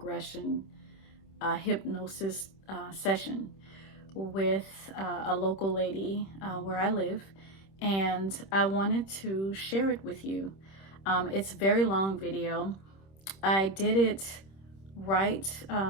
hypnosis session with a local lady where I live, and I wanted to share it with you. It's a very long video. I did it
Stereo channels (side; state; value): right; late; 26 ms